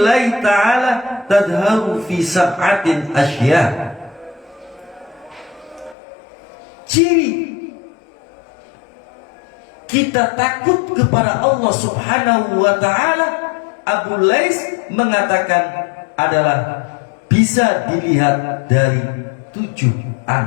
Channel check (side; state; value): right; drops out; at 6.0 s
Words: ta'ala tadharu fi sab'atin asya. Ciri kita takut kepada Allah Subhanahu wa ta'ala, Abu Lais mengatakan, adalah bisa dilihat dari 7